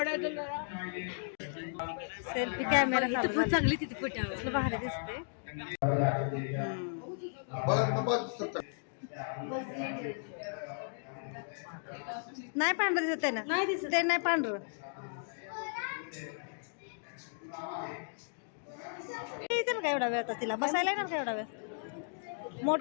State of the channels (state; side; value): silent; right; digital silence